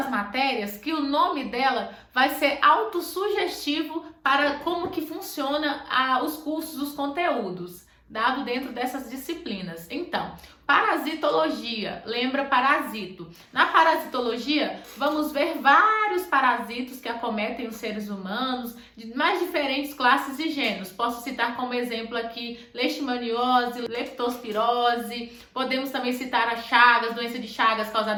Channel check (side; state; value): both; identical; correlation 1.00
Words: matérias que o nome dela vai ser autossugestivo para como que funciona os cursos, os conteúdos, dado dentro dessas disciplinas. Então, parasitologia, lembra parasito. Na parasitologia, vamos ver vários parasitos que acometem os seres humanos, de mais diferentes classes e gêneros. Posso citar como exemplo aqui leishmaniose, leptospirose, podemos também citar a Chagas, doença de Chagas